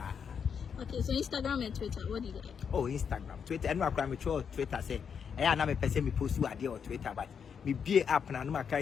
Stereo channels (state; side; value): quieter; right; 6.9 dB